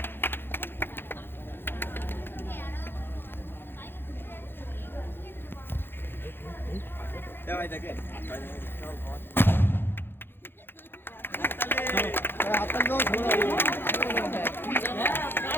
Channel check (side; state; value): right; late; 0.10 ms